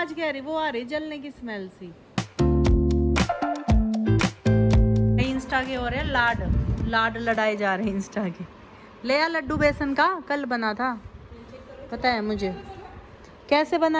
कह रही, वो आ रही जलने की स्मेल सी। इंस्टा के हो रहे लाड लड़ाए जा रहे हैं इंस्टा के। ले आ लड्डू बेसन का, कल बना था, पता है मुझे कैसे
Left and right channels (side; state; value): both; identical; correlation 1.00